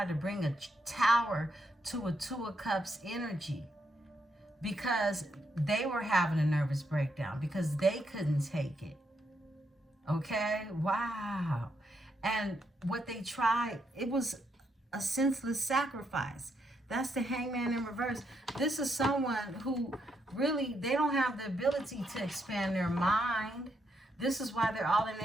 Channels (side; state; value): both; normal; correlation 0.79